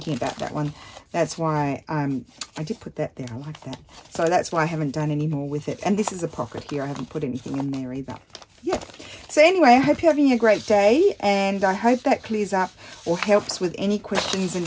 about that one. That's why I did put that there. I like that. So that's why I haven't done any more with it. And this is a pocket here. I haven't put anything in there either. Yeah. So anyway, I hope you're having a great day, and I hope that clears up or helps with any questions and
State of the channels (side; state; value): both; identical; correlation 1.00